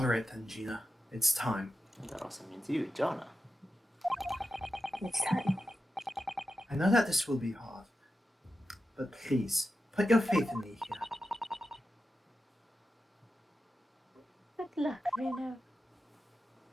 then, Gina. It's time. That also means you, Jonah. It's time. I know that this will be hard, but please, put your faith in me here. Good luck, Reno.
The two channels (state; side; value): normal; both; correlation 0.91